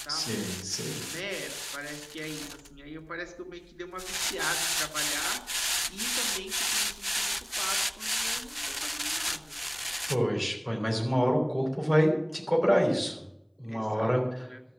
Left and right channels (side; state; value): both; identical; correlation 1.00